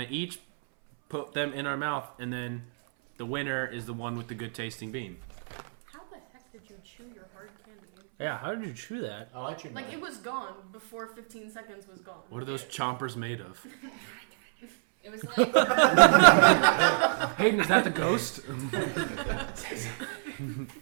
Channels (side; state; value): left; silent; 59 dB below the other